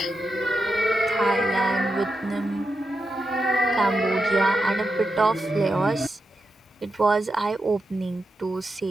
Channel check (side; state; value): both; normal; correlation 0.87